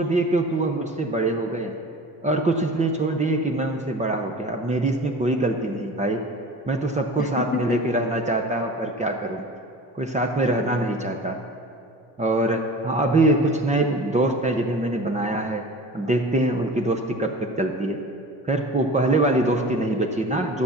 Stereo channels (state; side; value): normal; both; correlation 0.38